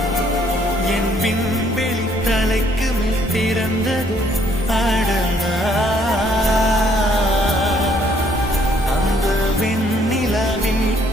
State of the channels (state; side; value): normal; both; correlation 0.65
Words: என் விண்வெளி தலைக்கு மேல் திறந்தது அடடா அந்த வெண்ணிலா